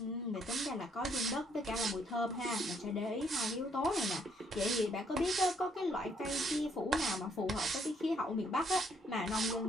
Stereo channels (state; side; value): normal; both; correlation 0.69